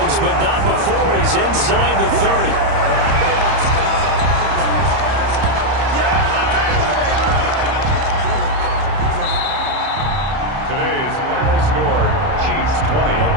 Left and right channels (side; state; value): left; late; 30 ms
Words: but not before he's inside the 30. Today's final score, Chiefs 20. Well,